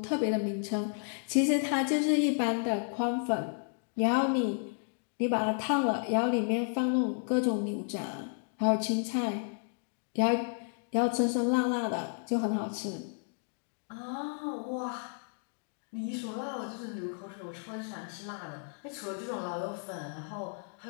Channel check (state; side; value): silent; right; 56 dB below the other